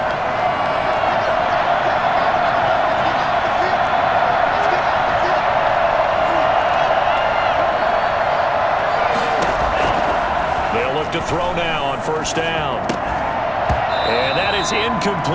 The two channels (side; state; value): both; identical; correlation 1.00